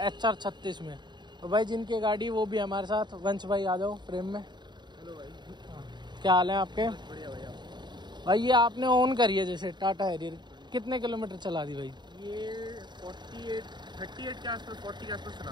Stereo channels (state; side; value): late; left; 0.21 ms